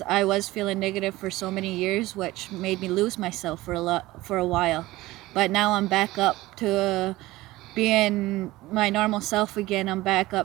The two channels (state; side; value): quieter; left; 18.3 dB